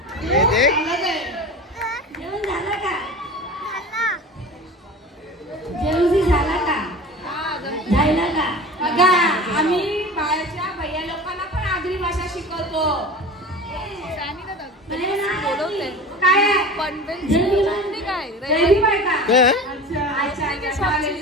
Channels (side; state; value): both; normal; correlation 0.35